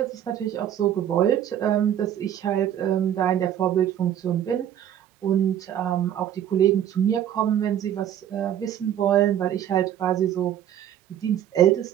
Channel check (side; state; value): left; quieter; 10.5 dB